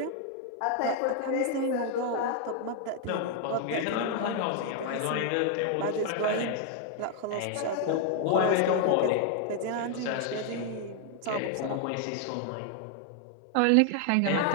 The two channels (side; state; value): both; different; correlation 0.00